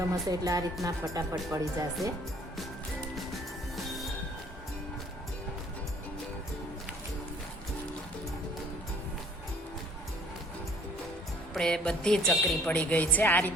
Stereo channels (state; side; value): normal; both; correlation 0.55